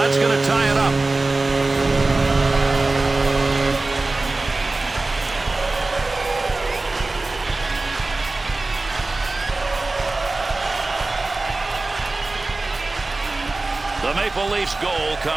going to tie it up. The Maple Leafs goal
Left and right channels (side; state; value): left; quieter; 3.2 dB